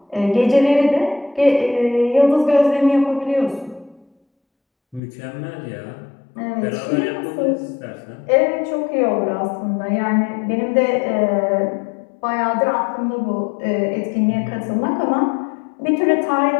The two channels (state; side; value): drops out; right; at 5.0 s